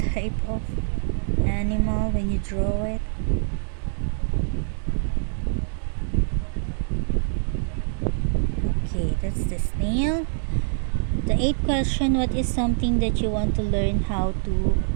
of animal when you draw it. Okay, that's the snail. The 8th question: what is something that you want to learn how to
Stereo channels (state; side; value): silent; left; digital silence